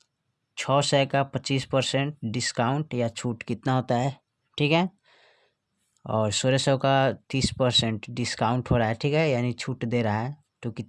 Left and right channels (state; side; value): identical; both; correlation 1.00